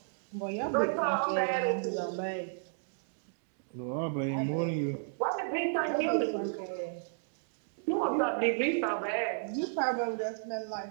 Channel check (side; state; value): left; silent; digital silence